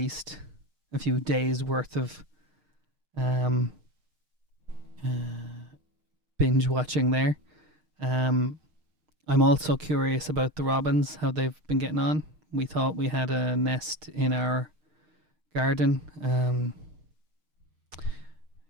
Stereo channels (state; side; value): late; left; 6.5 ms